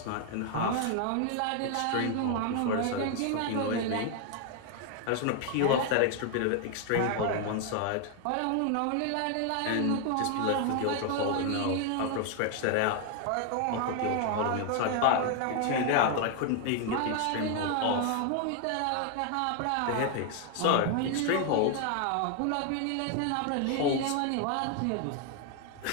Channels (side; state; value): both; different; correlation 0.00